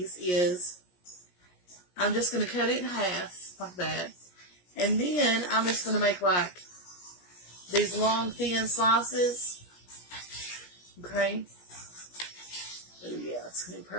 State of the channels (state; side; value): late; right; 17 ms